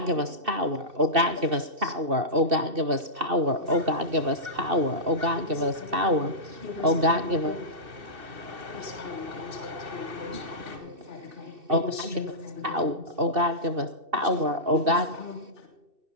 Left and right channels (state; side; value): late; left; 2.6 ms